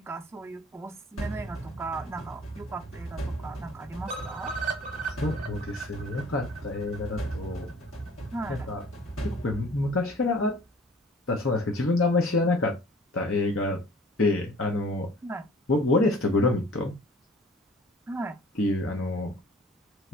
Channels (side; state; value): both; normal; correlation 0.50